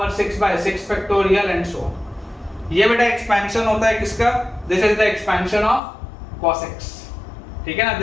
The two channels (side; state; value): right; drops out; at 5.8 s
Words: 6 by 6 factorial and so on. ये बेटा एक्सपेंशन होता है किसका? This is the expansion of cos x, ठीक है ना।